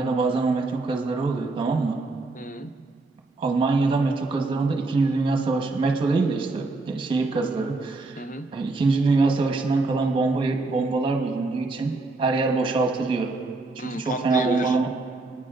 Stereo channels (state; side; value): quieter; left; 3.3 dB